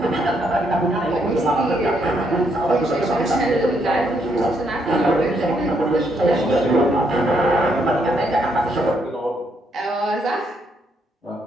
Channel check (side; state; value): both; normal; correlation 0.74